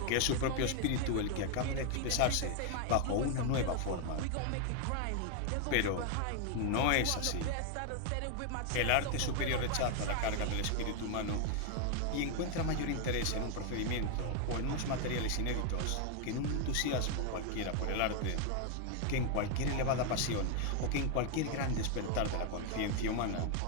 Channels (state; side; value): different; both; correlation 0.00